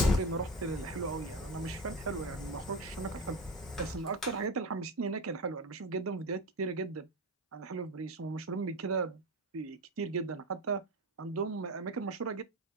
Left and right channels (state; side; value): normal; both; correlation 0.22